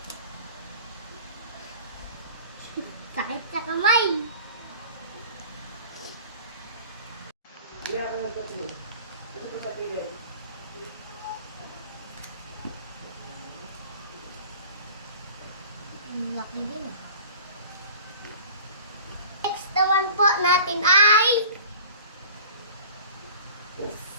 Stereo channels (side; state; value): both; inverted; correlation -0.42